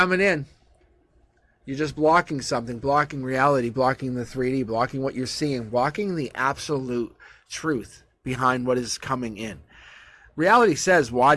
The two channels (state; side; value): identical; both; correlation 1.00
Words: in. You're just blocking something, blocking reality, blocking the 3D, blocking what you're seeing, blocking the absolute truth behind what is coming in. Reality says, why